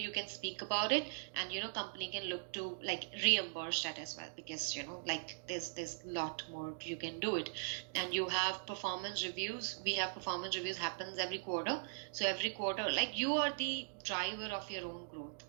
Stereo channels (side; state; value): left; silent; digital silence